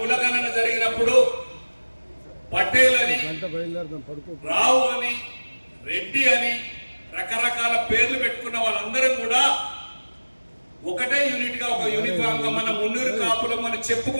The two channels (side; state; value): both; inverted; correlation -1.00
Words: జరిగినప్పుడు పటేల్ అని, రావు అని, రెడ్డి అని రకరకాల పేర్లు పెట్టుకున్న వాళ్ళందరం కూడా ఒకటే యూనిట్ గా ఒక యూనిఫామ్ గా మన మున్నూరు కాపులం మనం